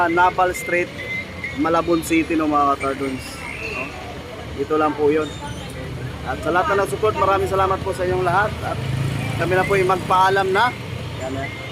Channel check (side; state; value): both; identical; correlation 1.00